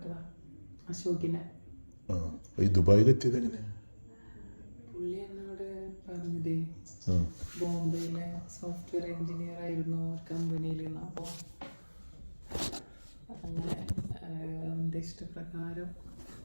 അശോകിനെ. ഈ ദുബായിലെത്തിയത് എങ്ങനെ? പുള്ളി എന്നോട് പറഞ്ഞത് ബോംബെയിലെ സോഫ്റ്റ്വെയർ എഞ്ചിനീയർ ആയിരുന്നു ഒരു കമ്പനിയിൽ. അപ്പോൾ അങ്ങനെ എൻ്റെ ഇഷ്ടപ്രകാരം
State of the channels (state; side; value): inverted; both; correlation -1.00